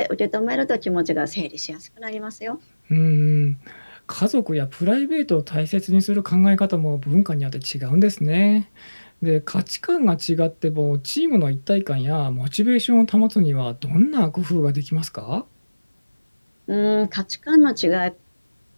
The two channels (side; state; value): both; inverted; correlation -1.00